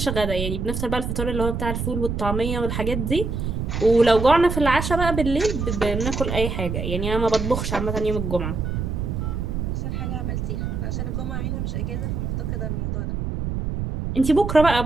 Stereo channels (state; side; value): noise; right; rumble, 3 dB below the sound